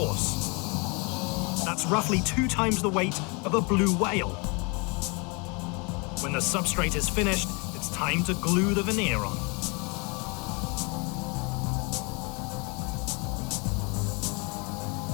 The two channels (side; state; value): right; quieter; 30.7 dB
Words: That's roughly 2 times the weight of a blue whale. When the substrate is finished, it's time to glue the veneer on.